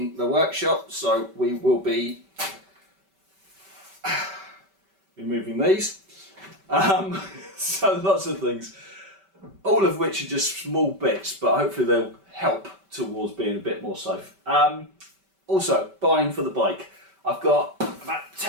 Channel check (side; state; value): left; late; 5.2 ms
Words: the workshop, so we will be removing these. So lots of things, all of which are just small bits, but hopefully they'll help towards being a bit more safe. Also, buying for the bike. I've got about